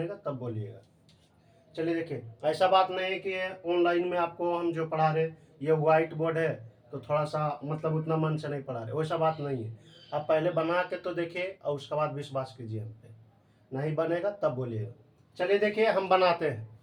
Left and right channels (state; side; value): identical; both; correlation 1.00